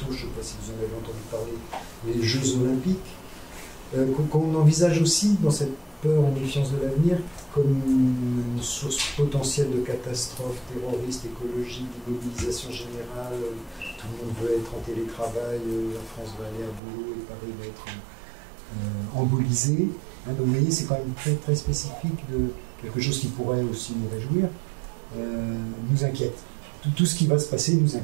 je ne sais pas si vous en avez entendu parler, les Jeux Olympiques, qu'on envisage aussi dans cette peur et méfiance de l'avenir comme une source potentielle de catastrophes terroristes, écologiques, d'immobilisation générale. Tout le monde veut être en télétravail, la France va aller à boulot et Paris va être embolisé. Donc vous voyez, c'est quand même très, très spécifique de quelque chose qui pourrait aussi nous réjouir, nous inquiète. Tout ce qui va se passer nous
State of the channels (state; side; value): drops out; left; at 16.8 s